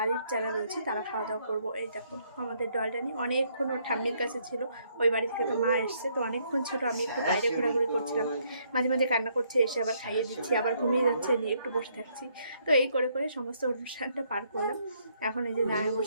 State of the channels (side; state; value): both; inverted; correlation -0.70